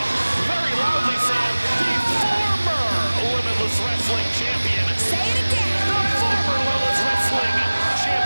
very loudly, Sam, the former Limitless Wrestling Champion. Say it again. The former Limitless Wrestling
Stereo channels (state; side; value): inverted; both; correlation -1.00